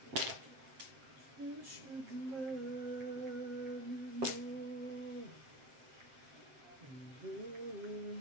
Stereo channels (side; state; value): left; late; 7.6 ms